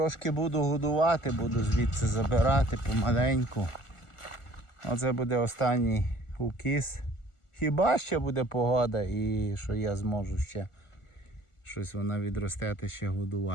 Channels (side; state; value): right; late; 1.4 ms